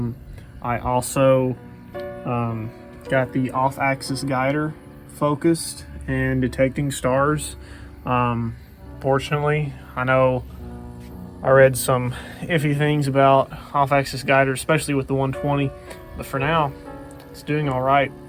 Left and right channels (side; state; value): both; identical; correlation 1.00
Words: I also got the off-axis guider focused and detecting stars. Fortunately, I know I read some iffy things about off-axis guider, especially with the 120, but for now, it's doing all right.